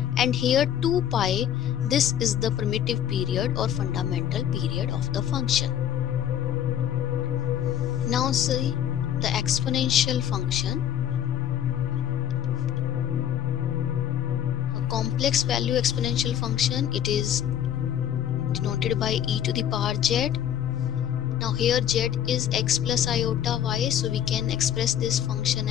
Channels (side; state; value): right; quieter; 9.8 dB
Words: And here 2 pi, this is the primitive period or fundamental period of the function. Now see the exponential function. A complex value exponential function, it is denoted by e to the power z. Now here z is x plus iota y, so we can express this function